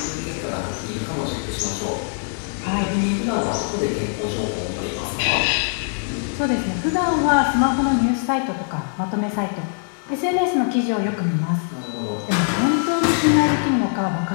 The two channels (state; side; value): silent; right; digital silence